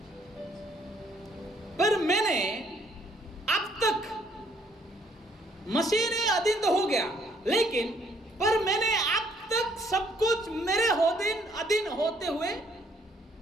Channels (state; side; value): normal; both; correlation 0.66